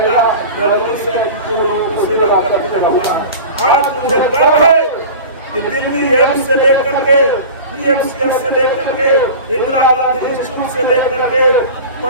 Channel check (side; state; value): both; inverted; correlation -0.35